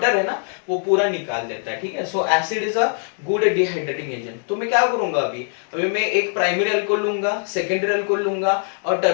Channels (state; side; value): silent; right; 59 dB below the other